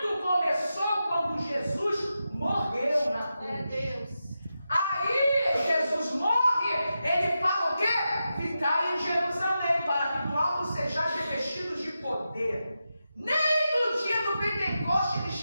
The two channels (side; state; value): both; inverted; correlation -0.90